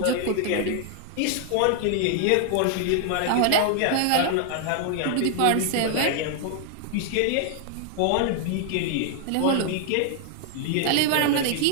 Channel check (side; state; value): both; different; correlation 0.00